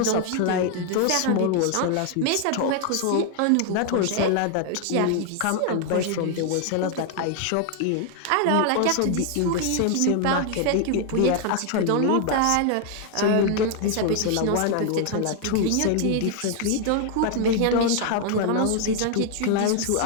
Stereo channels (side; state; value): both; different; correlation 0.00